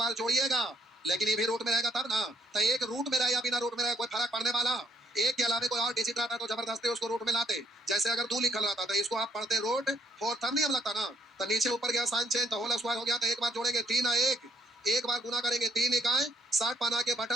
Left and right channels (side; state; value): both; normal; correlation 0.67